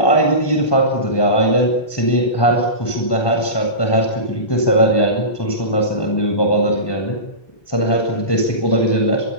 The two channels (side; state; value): right; late; 1.2 ms